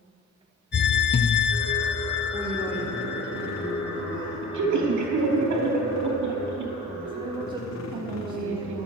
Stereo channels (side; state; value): both; normal; correlation 0.39